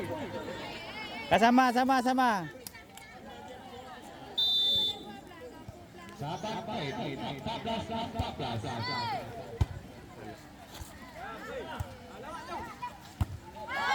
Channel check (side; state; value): both; identical; correlation 1.00